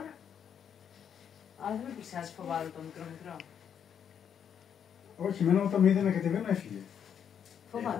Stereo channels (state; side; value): quieter; right; 8.2 dB